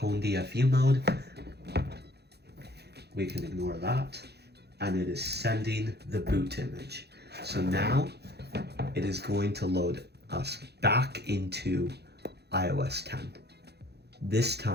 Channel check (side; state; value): left; late; 0.48 ms